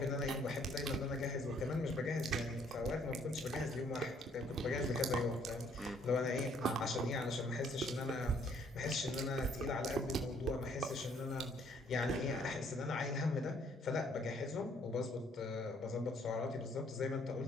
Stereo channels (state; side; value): normal; both; correlation 0.64